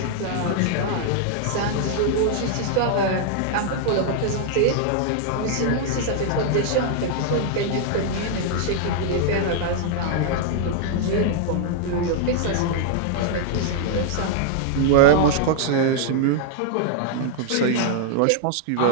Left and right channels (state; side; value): different; both; correlation -0.01